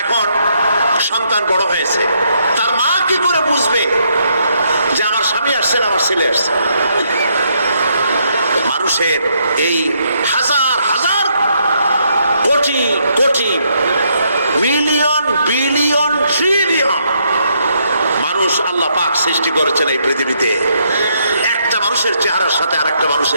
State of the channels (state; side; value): inverted; both; correlation -0.74